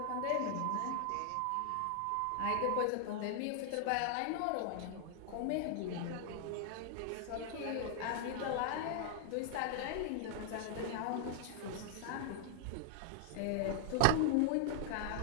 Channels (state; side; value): different; both; correlation 0.00